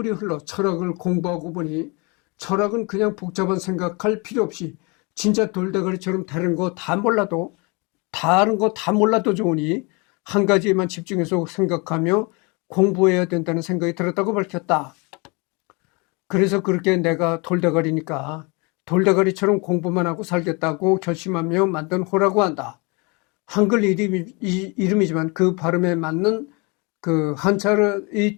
흘러 철학을 공부하고 보니 철학은 그냥 복잡한 생각할 필요 없이 진짜 돌대가리처럼 다른 거 다 몰라도 좋으니 한 가지에만 집중해서 생각하며 공부해야 된다는 생각이 들었다고 밝혔다. 그래서 그렇게 내가 돌대가리니까 돌대가리처럼 공부만 하고 살겠다고 결심하며 만든 호라고 한다. 한글 이름이지만 그 발음에 맞는 그 한자의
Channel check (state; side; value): quieter; right; 29.5 dB